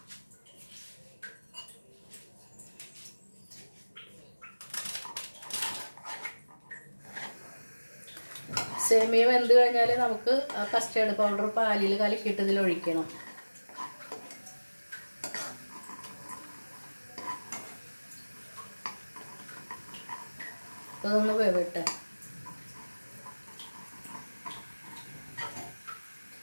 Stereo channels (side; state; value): both; inverted; correlation -1.00